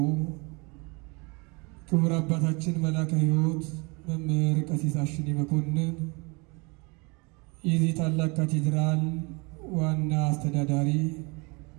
ክቡር አባታችን መላከ ሕይወት መምህር ቀሲስ አሽኔ መኮንን የዚህ ታላቅ ካቴድራል ዋና አስተዳዳሪ፣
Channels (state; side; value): quieter; left; 28.8 dB